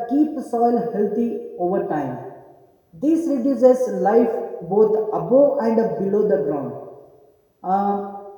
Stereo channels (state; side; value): identical; both; correlation 1.00